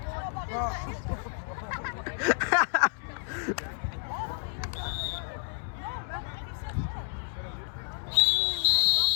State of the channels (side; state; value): right; silent; digital silence